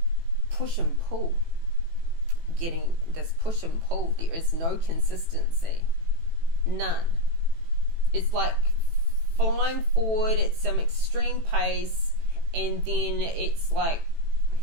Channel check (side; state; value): left; late; 18 ms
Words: push and pull. Getting this push and pull. There is no consistency. None. It's like flying forward at some extreme pace, and then it's like